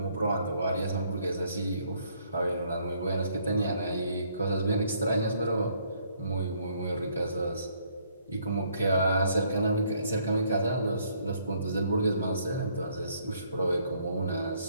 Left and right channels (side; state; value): both; inverted; correlation -0.67